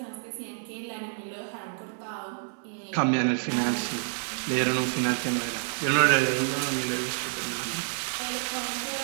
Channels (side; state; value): left; silent; 59 dB below the other